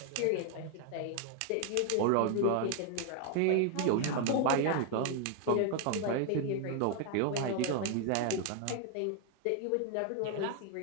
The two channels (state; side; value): different; both; correlation 0.00